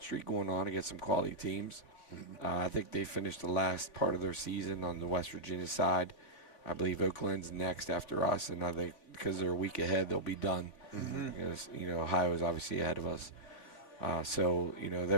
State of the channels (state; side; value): late; right; 3.8 ms